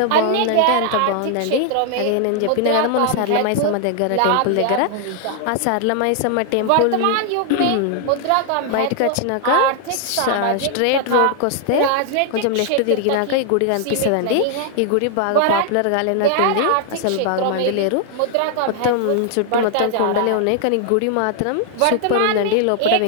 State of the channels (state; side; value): different; both; correlation 0.00